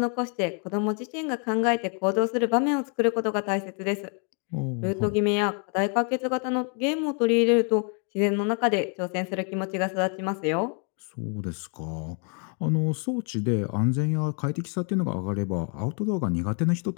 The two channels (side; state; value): right; quieter; 39.8 dB